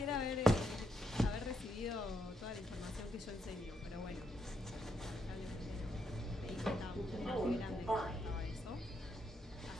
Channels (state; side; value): normal; both; correlation 0.79